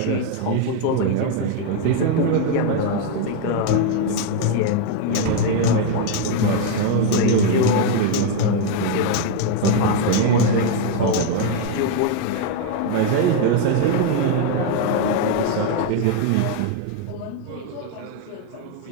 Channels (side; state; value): both; different; correlation 0.01